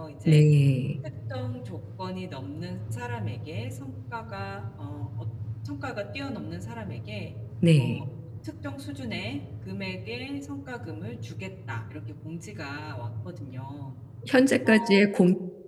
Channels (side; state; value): both; identical; correlation 1.00